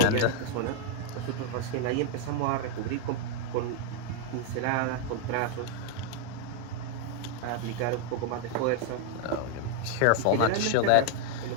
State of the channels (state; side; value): different; both; correlation 0.00